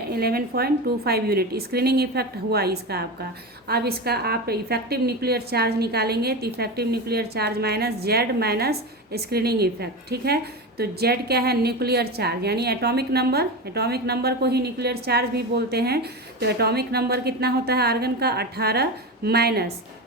यूनिट स्क्रीनिंग इफेक्ट हुआ इसका आपका। अब इसका आप इफेक्टिव न्यूक्लियर चार्ज निकालेंगे तो effective nuclear charge minus Z minus screening effect, ठीक है। तो जेड क्या है, न्यूक्लियर चार्ज यानी एटॉमिक नंबर, एटॉमिक नंबर को ही न्यूक्लियर चार्ज भी बोलते हैं। तो एटॉमिक नंबर कितना होता है आर्गन का, 18 माइनस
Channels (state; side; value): normal; both; correlation 0.22